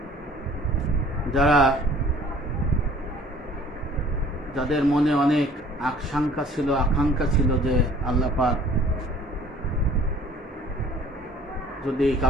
যাদের মনে অনেক আকাঙ্ক্ষা ছিল যে আল্লাহ পাক যদি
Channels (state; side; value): normal; both; correlation 0.52